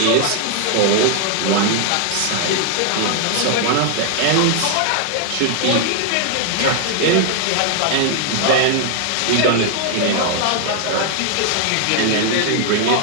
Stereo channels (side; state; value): both; different; correlation 0.00